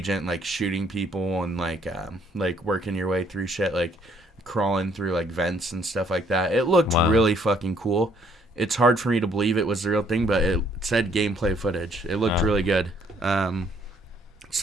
like shooting people and like working your way through shit, like crawling through like vents and stuff like that. It looked really fucking cool. It's hard for me to believe it was the real thing, but it said gameplay footage. It looked really good.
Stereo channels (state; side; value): normal; both; correlation 0.65